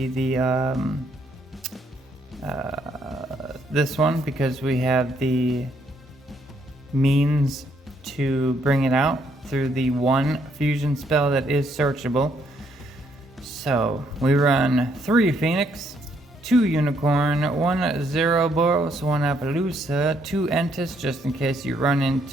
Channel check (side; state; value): both; normal; correlation 0.71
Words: the this one, because we have the means to bring it out. through the one fusion spell that is searchable. So we run 3 Phoenix, 2 Unicorn, 1 Zeroboros, 1 Appaloosa, 2 Entis, just in case you run